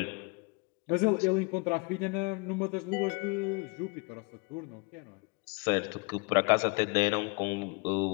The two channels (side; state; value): right; quieter; 28.2 dB